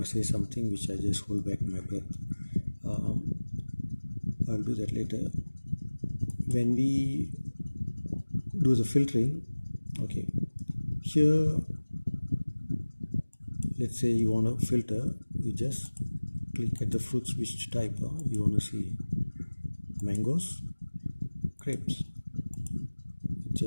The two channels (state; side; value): inverted; both; correlation -1.00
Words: to say something which I just hold back my breath. I'll do that later. When we do the filtering, okay, here let's say you want to filter, you just click at the fruits which type you want to see. Mangoes, grapes. It